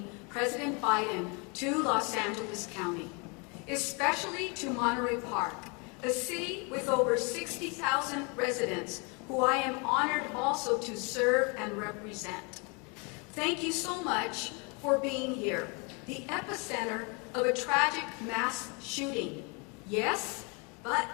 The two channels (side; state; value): right; quieter; 32.3 dB